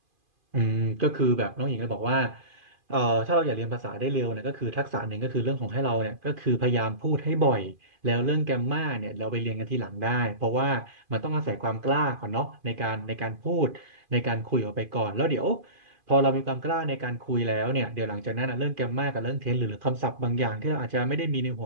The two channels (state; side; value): late; left; 2.5 ms